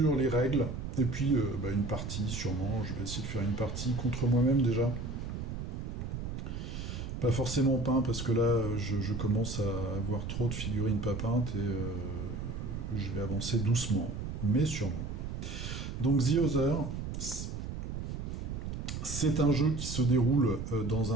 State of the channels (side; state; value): right; noise; rumble, 5 dB below the sound